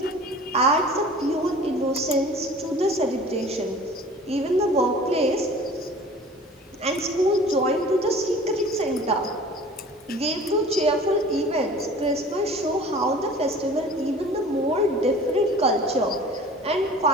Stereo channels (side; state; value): both; normal; correlation 0.45